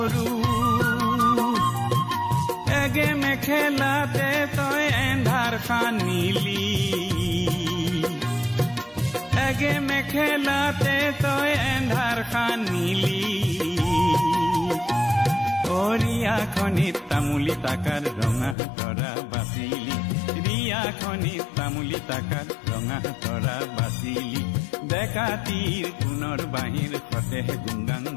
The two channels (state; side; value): drops out; right; at 18.6 s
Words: एगे में खेलाते तो एंधार खानीली एगे में खेलाते तो एंधार खानीली ओरिया खनित तामुली ताकार रंगा तरा बासिली रिया खनित तामुली ताकार रंगा तरा बासिली डेकातीर कुनर बाहिर फतेह गुंगाং